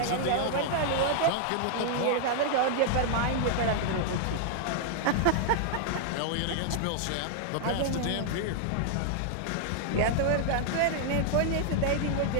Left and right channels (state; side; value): different; both; correlation -0.01